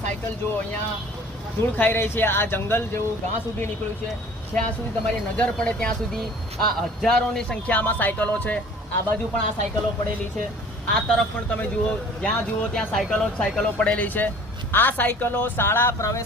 સાયકલ જુઓ, અહીંયા ધૂળ ખાઈ રહી છે। આ જંગલ જેવું ઘાસ સુધી નીકળ્યું છે, જ્યાં સુધી તમારી નજર પડે ત્યાં સુધી આ હજારોની સંખ્યામાં સાયકલો છે। આ બાજુ પણ આ સાયકલો પડેલી છે, આ તરફ પણ તમે જુઓ, જ્યાં જુઓ ત્યાં સાયકલો પડેલી છે। આ સાયકલો શાળા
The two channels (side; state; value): both; normal; correlation 0.49